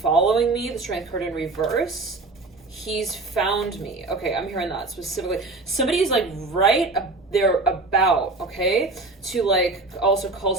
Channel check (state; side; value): quieter; left; 3.4 dB